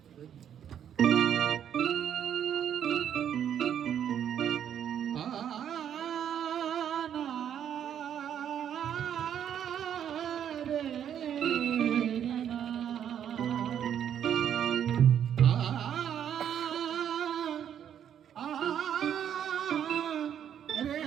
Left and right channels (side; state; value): left; quieter; 9.4 dB